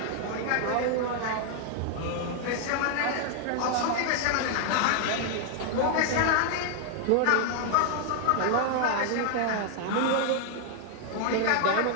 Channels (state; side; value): different; both; correlation 0.00